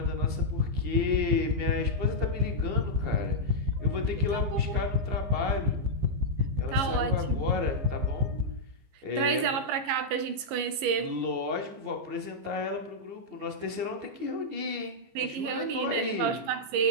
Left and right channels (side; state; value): left; late; 15 ms